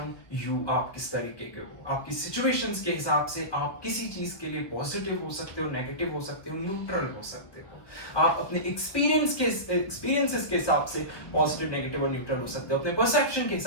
you, आप किस तरीके के हो। आपकी सिचुएशंस के हिसाब से आप किसी चीज के लिए पॉजिटिव हो सकते हो, नेगेटिव हो सकते हो, न्यूट्रल हो सकते हो। आप अपने एक्सपीरियंसेस के हिसाब से पॉजिटिव, नेगेटिव और न्यूट्रल हो सकते हो। अपने परसेप्शन के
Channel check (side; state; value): right; late; 1.4 ms